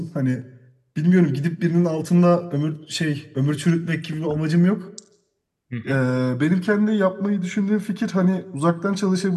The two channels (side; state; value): both; identical; correlation 1.00